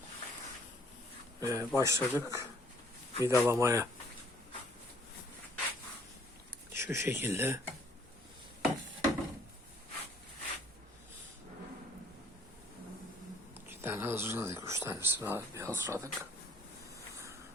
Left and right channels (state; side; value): normal; both; correlation 0.60